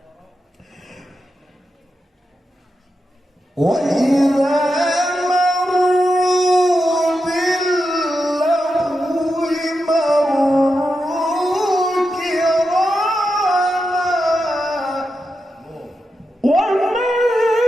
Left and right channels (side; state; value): both; normal; correlation 0.88